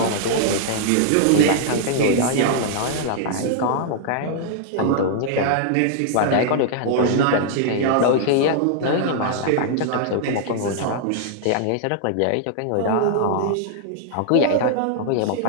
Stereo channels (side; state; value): both; different; correlation -0.01